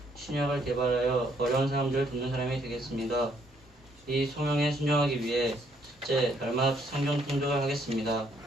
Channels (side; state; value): both; normal; correlation 0.69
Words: 신약을 개발하여 어려운 사람들을 돕는 사람이 되겠습니다. 이 소명에 순종하기 위해 첫째, 날마다 성경 통독을 하겠습니다.